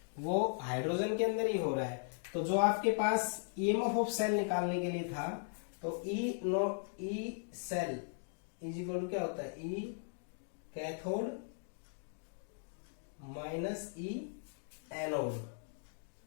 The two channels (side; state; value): right; silent; digital silence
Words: वो हाइड्रोजन के अंदर ही हो रहा है। तो जो आपके पास ईएमएफ ऑफ सेल निकालने के लिए था, तो ई सेल = क्या होता है, ई कैथोड माइनस ई एनोड।